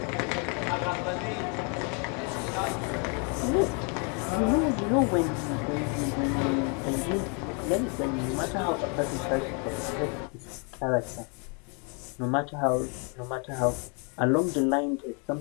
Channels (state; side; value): quieter; right; 36.5 dB